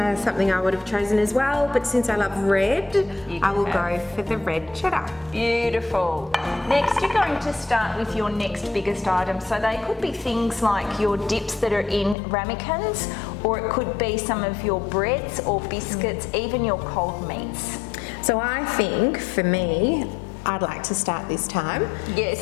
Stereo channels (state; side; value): drops out; right; at 12.2 s